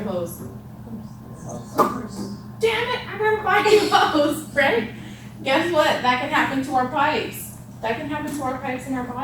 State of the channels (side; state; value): both; identical; correlation 1.00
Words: hose? Damn it, I gotta buy a new hose, right? Guess what? That can happen to our pipes. That can happen to our pipes in our